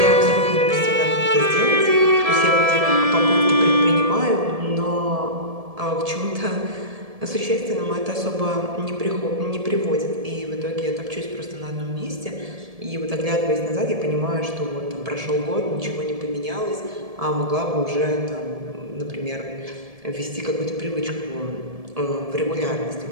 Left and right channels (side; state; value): left; late; 1.7 ms